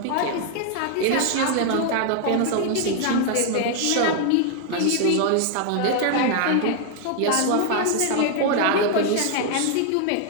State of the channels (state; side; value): different; both; correlation 0.00